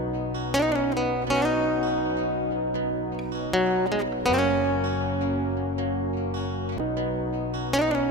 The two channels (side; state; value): right; noise; rumble, 26 dB below the sound